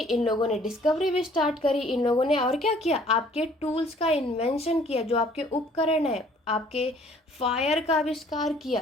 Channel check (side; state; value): both; normal; correlation 0.57